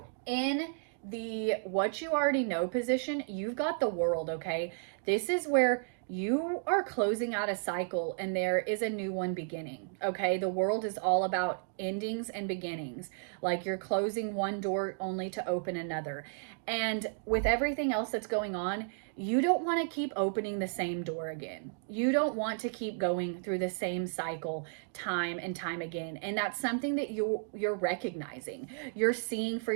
In the what you already know position, you've got the World, okay? This is where you are closing out a cycle and there is a new one beginning. Okay. The world is all about endings and beginnings. Like you're closing one door only to open another. And with everything else that's going on, you don't want to keep opening the same door again. You don't want to keep going through the same cycle time and time again. And that's something that you're recognizing. You're seeing for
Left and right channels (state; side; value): silent; left; digital silence